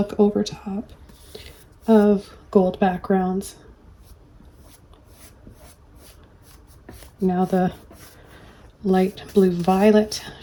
over top of gold backgrounds. Now the light blue violet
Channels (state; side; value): identical; both; correlation 1.00